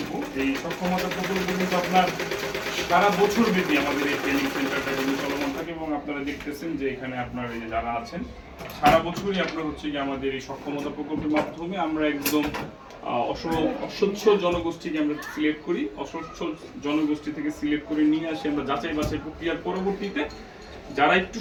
কিন্তু আপনার সারা বছর ব্যাপী আমাদের এই ট্রেনিং সেন্টারটা কিন্তু চলমান থাকে এবং আপনারা দেখতেছেন যে এখানে আপনার এই যে যারা আছেন সারা বছরই আপনার হচ্ছে কি আমাদের এই সক্ষমতা প্রকল্পের মাধ্যমে আমরা একদম অস্বচ্ছ জনগোষ্ঠীকে আমরা সিলেক্ট করি, অস্বচ্ছ জনগোষ্ঠী থেকে সিলেক্ট করে নিয়ে আসি আমরা যাচাই বাছাই প্রক্রিয়ার পরবর্তীতে যারা একটু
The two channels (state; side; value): identical; both; correlation 1.00